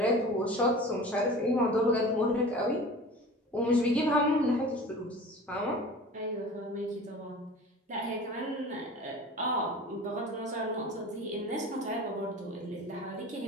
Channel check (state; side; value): normal; both; correlation 0.39